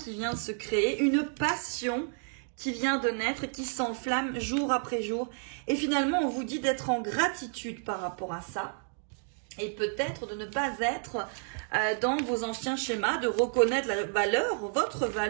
vient de se créer, une passion qui vient de naître et qui s'enflamme jour après jour. Et finalement, on vous dit d'être en gratitude par rapport à ça. Et peut-être de ne pas être dans vos anciens schémas, de reconnaître la valeur, votre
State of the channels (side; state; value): left; silent; 57 dB below the other